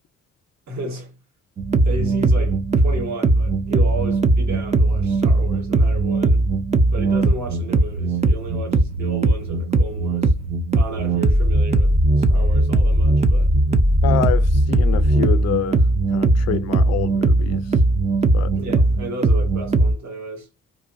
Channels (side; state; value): both; normal; correlation 0.69